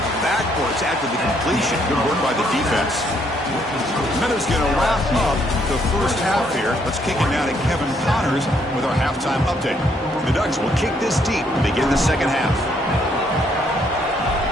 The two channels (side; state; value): both; normal; correlation 0.70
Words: backwards after the completion. Good work by the defense. Minutes going to wrap up the first half here. Let's kick it now to Kevin Connors with our halftime update. The Ducks will kick this deep to begin the second half.